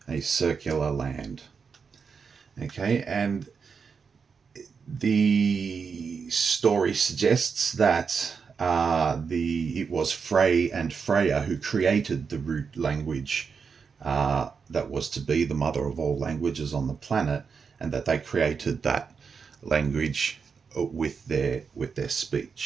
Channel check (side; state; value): left; quieter; 5.7 dB